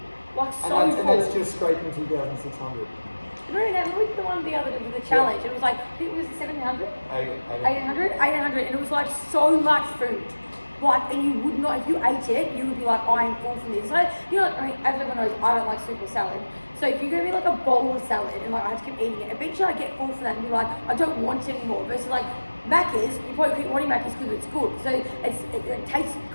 Like, And so that's, full. and that's just scraping 2,600. Remember that? We did the one the other day with the challenge. It was like, I think it was 700? 800, and it was like so much food. Like, and you would not, if you ate it, you would be like, I am full from this. So, you know, I mean, as everyone knows, I don't like soup or salad. So if you're gonna be like a bowl of salad and like I have to keep eating it, eventually I get full from that and be like, I don't want it anymore. Versus like Macca's, you probably keep wanting Macca's because it's good. So it tastes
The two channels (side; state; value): both; inverted; correlation -1.00